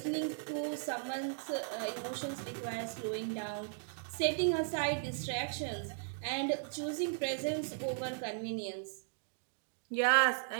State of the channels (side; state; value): left; silent; digital silence